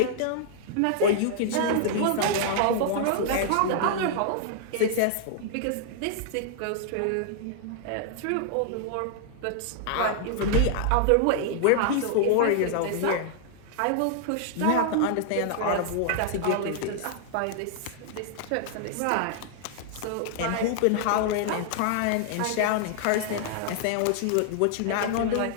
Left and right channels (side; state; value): both; different; correlation -0.01